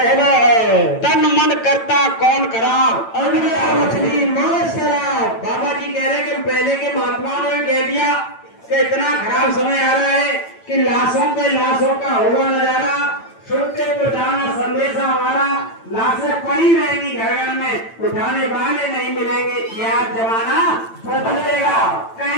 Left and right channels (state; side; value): late; right; 8.9 ms